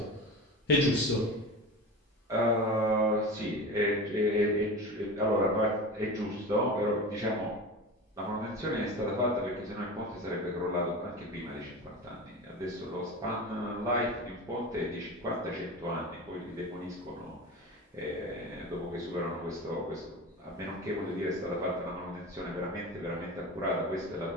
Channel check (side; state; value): both; normal; correlation 0.29